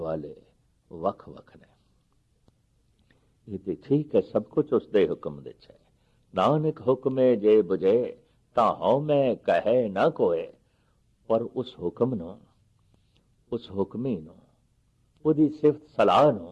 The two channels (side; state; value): both; identical; correlation 1.00